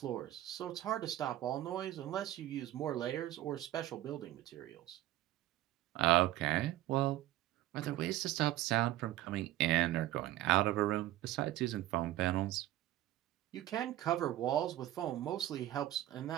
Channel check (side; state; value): left; quieter; 14.7 dB